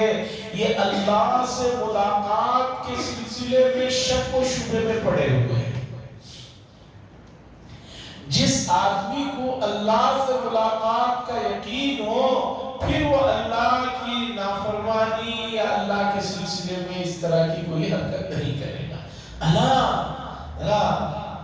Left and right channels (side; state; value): both; identical; correlation 1.00